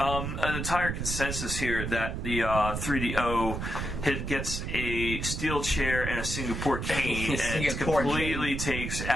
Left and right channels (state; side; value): noise; right; rumble, 4 dB below the sound